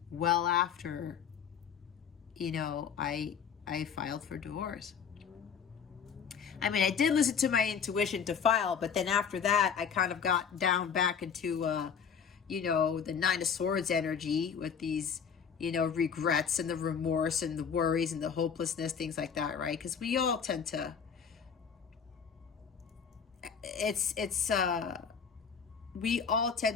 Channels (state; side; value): quieter; right; 6.9 dB